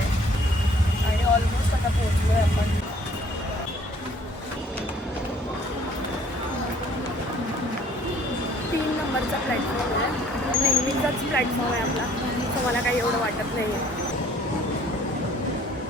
आणि ऑलमोस्ट आता पोहोचलो आहे आपण. 3 नंबरचा प्लॅटफॉर्म आहे, नेहमीचाच प्लॅटफॉर्म आहे आपला, सो मला काही एवढं वाटत नाही आहे.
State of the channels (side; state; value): both; normal; correlation 0.58